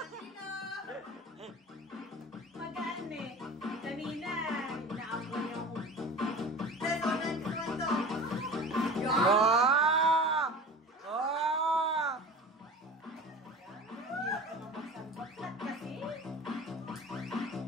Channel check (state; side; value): normal; both; correlation 0.37